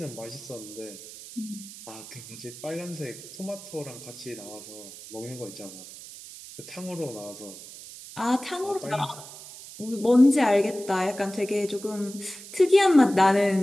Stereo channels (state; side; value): noise; right; hiss, 15 dB below the sound